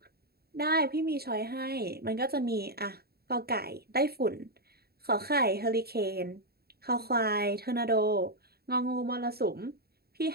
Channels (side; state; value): left; late; 0.46 ms